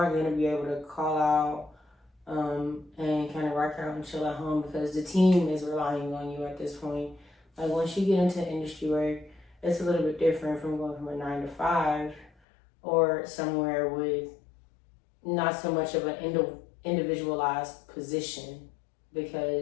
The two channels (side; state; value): right; drops out; at 12.3 s